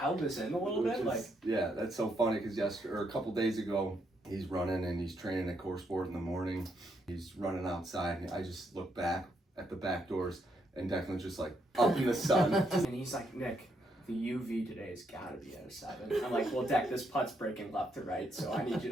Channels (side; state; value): both; normal; correlation 0.76